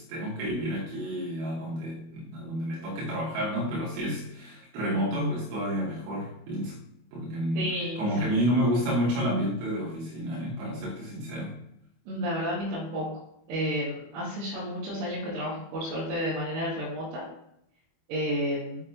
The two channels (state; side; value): late; left; 25 ms